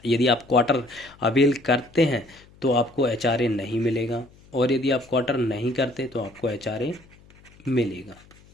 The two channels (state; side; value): noise; left; hum, 26 dB below the sound